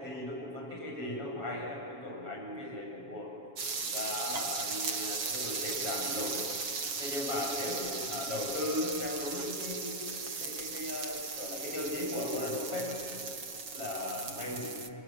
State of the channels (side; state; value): left; late; 7.3 ms